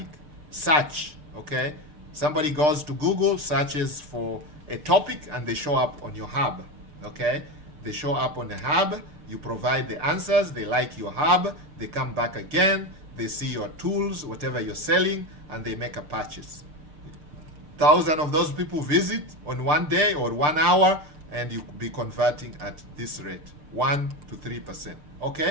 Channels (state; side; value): late; left; 6.7 ms